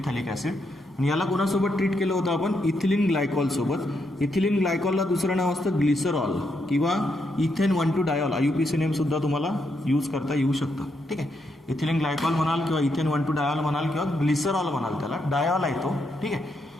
ॲसिड. आणि याला कोणासोबत ट्रीट केलं होतं आपण? इथिलीन ग्लायकॉल सोबत. इथिलीन ग्लायकॉलला दुसरं नाव असतं ग्लिसरॉल किंवा इथेन 1,2 डायॉल. IUPAC नेम सुद्धा तुम्हाला यूज करता येऊ शकतं. ठीक आहे, इथिलीन ग्लायकॉल म्हणाल किंवा इथेन 1,2 डायॉल म्हणाल किंवा ग्लिसरॉल म्हणाल, त्याला डायॉल आहे तो. ठीक आहे,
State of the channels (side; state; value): both; normal; correlation 0.79